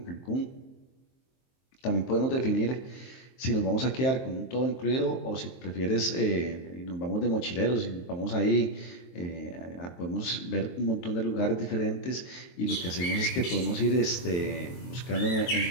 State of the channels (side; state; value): right; late; 23 ms